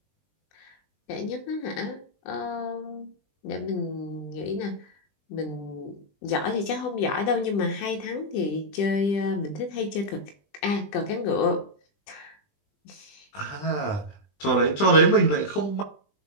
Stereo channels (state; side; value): late; right; 20 ms